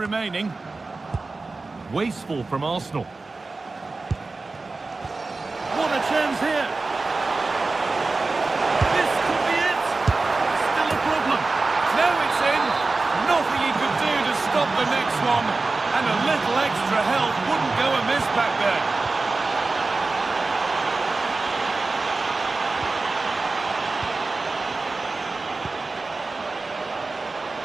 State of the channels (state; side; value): quieter; left; 3.6 dB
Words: Wasteful from Arsenal. What a chance here. This could be it. Still a problem. Now it's in. Nothing he could do to stop the next one. And a little extra help wouldn't go amiss back there.